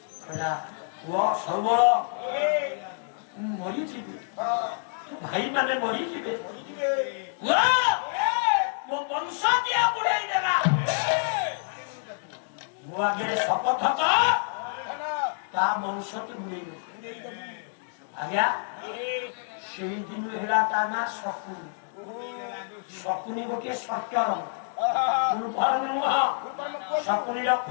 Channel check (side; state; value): right; silent; digital silence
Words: সবল মরিଯିবে ভাই মানে মরিଯିবে ମୋ ବଂଶ ଦିଆ ବୁଡେଇ ଦେଲା ମୁଁ ଆଗରେ ଶପଥ ତା ବଂଶ ତୁ ବୁଡେଇ ଆଜ୍ଞା ସେଇ ଦିନ ହେଲା ତା ନା ଶକୁନି ଶକୁନି ଗୋଟିଏ ସର୍ଟର ଫୁଲ୍ ଫର୍ମ ନୁହଁ ଶକୁନିର